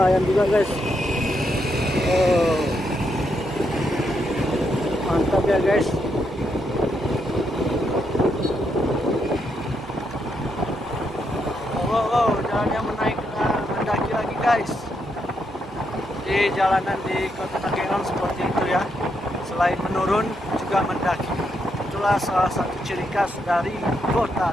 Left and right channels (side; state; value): both; normal; correlation 0.80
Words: ayam juga guys. Oh, mantap ya guys. Wow, wow, jalannya mendaki lagi guys. Di jalanan di Kota Takengon seperti itu ya. Selain menurun juga mendaki. Itulah salah satu ciri khas dari Kota